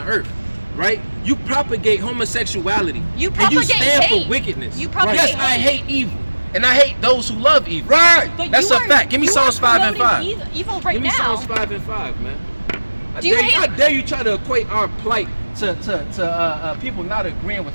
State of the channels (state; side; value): inverted; both; correlation -1.00